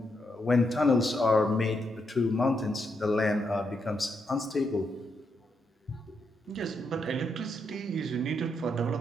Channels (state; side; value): normal; both; correlation 0.80